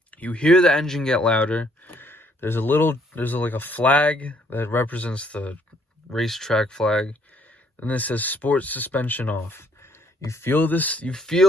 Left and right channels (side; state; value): both; normal; correlation 0.66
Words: you hear the engine get louder. There's like a flag that represents the racetrack flag. And it says sport suspension off. You feel this, you